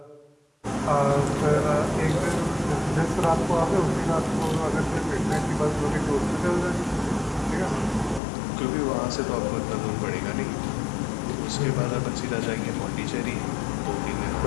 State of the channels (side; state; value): right; drops out; at 8.2 s